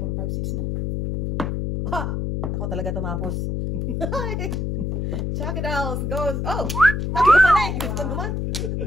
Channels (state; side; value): noise; left; hum, 1 dB below the sound